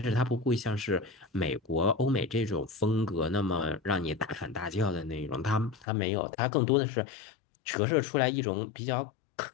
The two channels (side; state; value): right; drops out; at 5.9 s